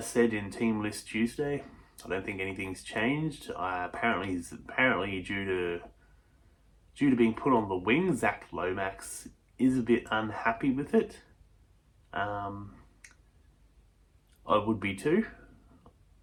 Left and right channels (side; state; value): both; identical; correlation 1.00